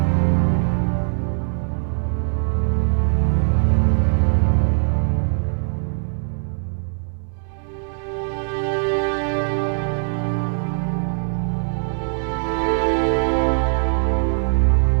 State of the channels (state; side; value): silent; left; digital silence